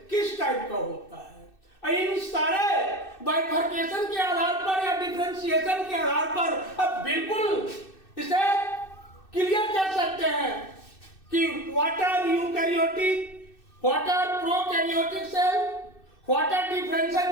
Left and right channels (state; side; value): late; right; 2.6 ms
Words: किस टाइप का होता है। इन सारे बाइफर्केशन के आधार पर या डिफरेंशिएशन के आधार पर अब बिल्कुल इसे क्लियर कर सकते हैं कि what are eukaryotic, what are prokaryotic cell, what are